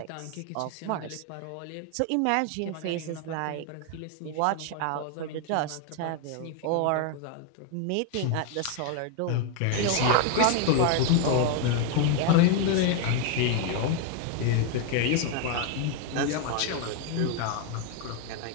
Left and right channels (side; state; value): both; different; correlation 0.00